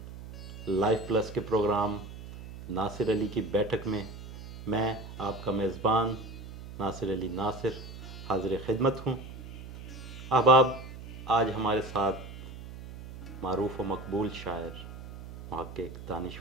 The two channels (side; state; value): right; noise; hum, 13 dB below the sound